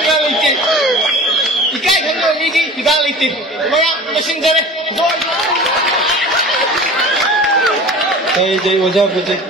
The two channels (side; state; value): both; normal; correlation 0.39